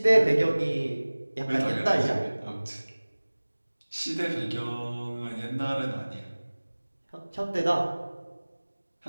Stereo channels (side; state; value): both; inverted; correlation -1.00